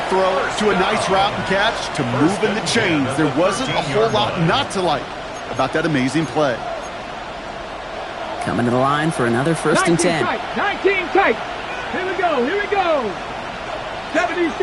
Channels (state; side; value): identical; both; correlation 1.00